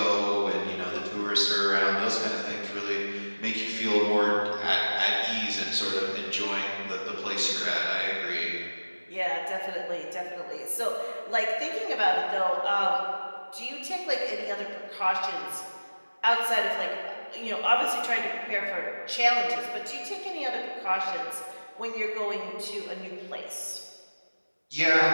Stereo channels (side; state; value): both; inverted; correlation -1.00